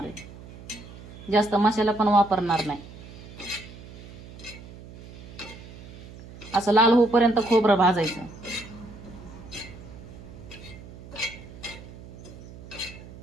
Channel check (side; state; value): right; noise; hum, 16 dB below the sound